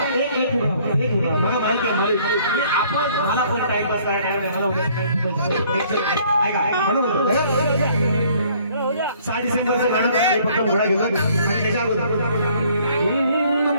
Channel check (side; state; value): both; inverted; correlation -0.60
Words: एक मला माहिती आहे आपण मला पण टाइमपास करायला मला ऐका म्हणून 6 डिसेंबरचं गाणं फक्त घोडा गेलं आणि त्याच्या अगोदर